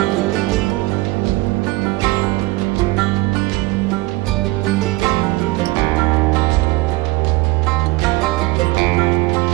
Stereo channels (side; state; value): left; quieter; 20.9 dB